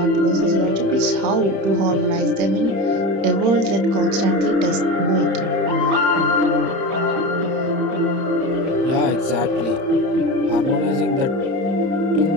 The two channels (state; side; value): late; left; 30 ms